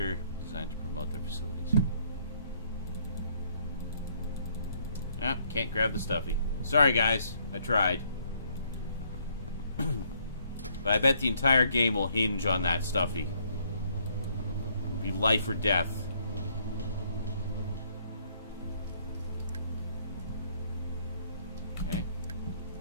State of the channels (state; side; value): inverted; both; correlation -0.68